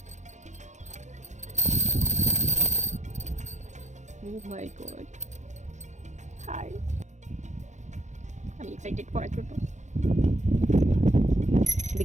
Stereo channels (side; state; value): left; late; 0.34 ms